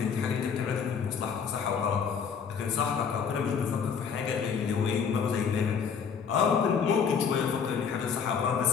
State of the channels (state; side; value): quieter; right; 6.6 dB